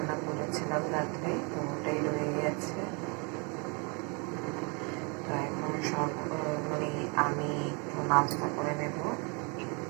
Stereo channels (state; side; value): quieter; left; 32.8 dB